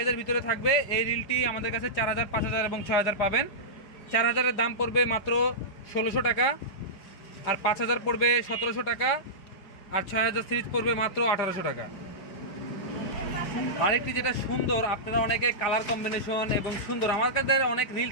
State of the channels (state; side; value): late; right; 4.9 ms